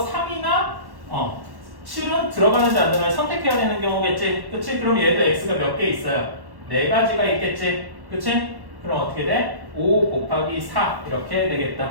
3이나 7은 들어가는지 안 들어가는지 선택해야 되는 경우겠지. 그치? 그럼 얘도 x가 몇 개 있어요? 네 가지가 있겠지. 그치? 그럼 어떻게 돼? 5 곱하기 4 이렇게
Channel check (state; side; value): late; left; 1.1 ms